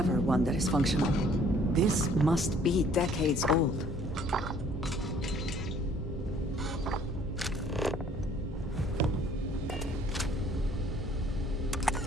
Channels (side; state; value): both; normal; correlation 0.58